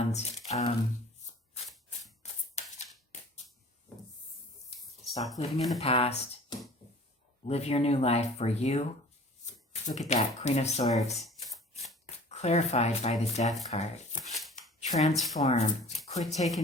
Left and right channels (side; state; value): both; normal; correlation 0.46